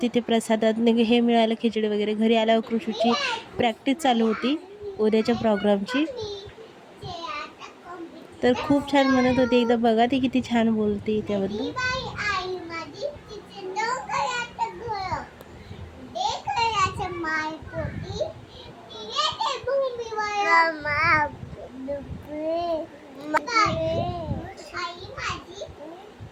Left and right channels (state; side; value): identical; both; correlation 1.00